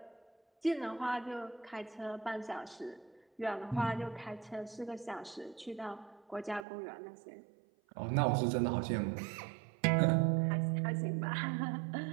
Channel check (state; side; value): drops out; left; at 6.7 s